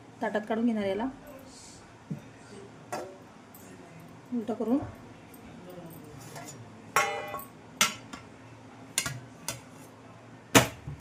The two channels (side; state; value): both; identical; correlation 1.00